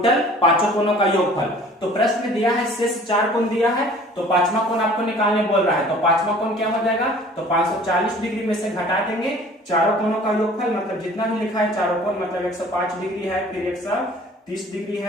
पांचों कोणों का योगफल। तो प्रश्न में दिया है शेष 4 कोण दिया है, तो पांचवा कोण आपको निकालने बोल रहा है, तो पांचवा कोण क्या हो जाएगा, तो 540 डिग्री में से घटा देंगे चारों कोणों का योगफल, मतलब जितना भी लिखा है चारों कोण, मतलब 105 डिग्री है, फिर 130 डिग्री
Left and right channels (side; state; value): both; normal; correlation 0.49